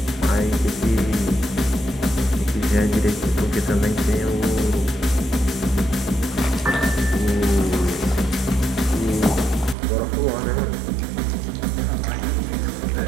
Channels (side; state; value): left; drops out; at 9.8 s